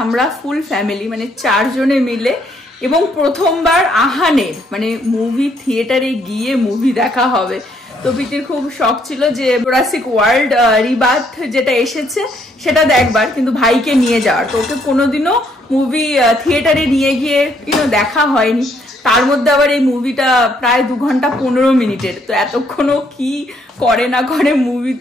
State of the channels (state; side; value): normal; both; correlation 0.70